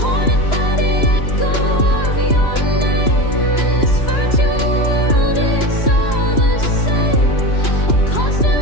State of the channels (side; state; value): right; late; 2.9 ms